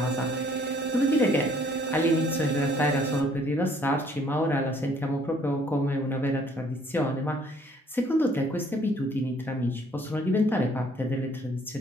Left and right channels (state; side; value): normal; both; correlation 0.61